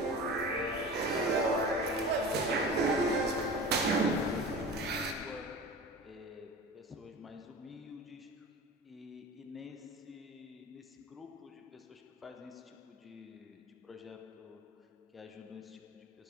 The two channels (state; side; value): normal; both; correlation 0.34